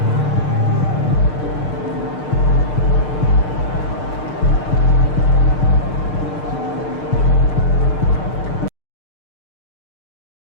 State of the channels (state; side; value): late; right; 6.6 ms